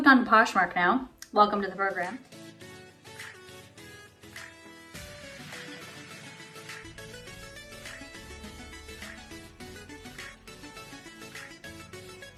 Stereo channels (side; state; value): both; identical; correlation 1.00